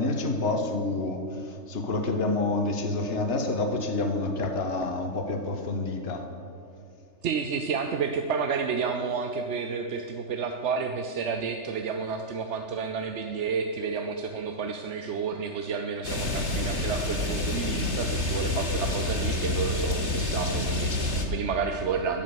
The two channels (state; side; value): late; left; 3.3 ms